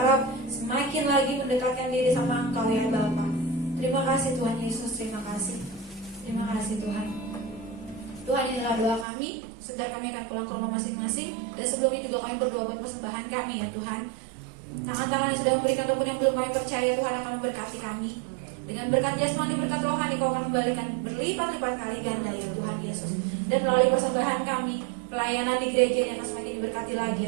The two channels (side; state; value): left; drops out; at 9.1 s